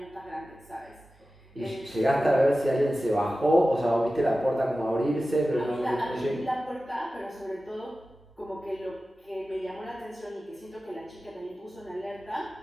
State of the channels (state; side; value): normal; both; correlation 0.95